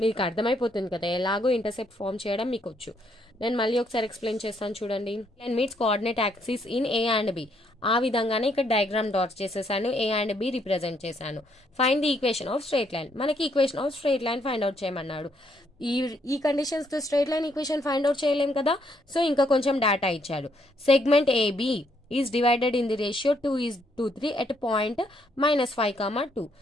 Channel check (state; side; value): normal; both; correlation 0.72